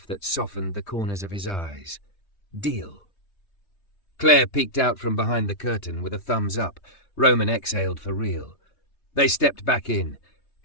that softened the corners of his eyes. Deal. Claire peeked out from behind the curtain with a thumbs up. Roman exhaled for real. They stepped back in.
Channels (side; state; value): right; late; 3.2 ms